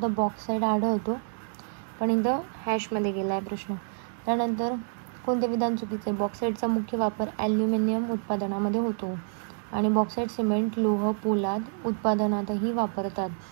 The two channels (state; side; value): silent; left; 59 dB below the other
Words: तर बॉक्साईट आढळतो, पण इथं हॅशमध्ये गेला आहे प्रश्न. त्यानंतर कोणते विधान चुकीचे? बॉक्साईटचा मुख्य वापर ॲल्युमिनियम उत्पादनामध्ये होतो आणि बॉक्साईट सिमेंट, लोह, पोलाद उत्पादनातही वापरतात.